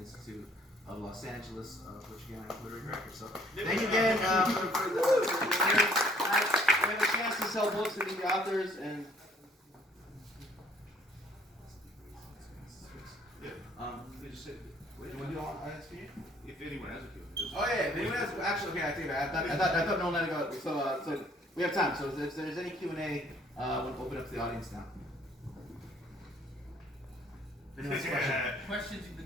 of Los Angeles, which again I'm Twitter director. So thank you again for the we have a chance to sell books and meet the authors and. They just said, Do you want to do all ISP? if anyone has a feeling. Oh yeah, if anyone has actually okay, I take it back. I thought no one let it go. So we have time. So if there's any Q&A, we'll open up to the audience now. If anyone has a question. Questions you've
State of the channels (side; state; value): both; normal; correlation 0.60